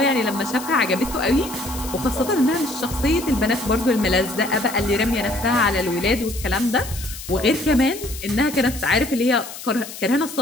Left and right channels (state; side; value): noise; left; hiss, 12 dB below the sound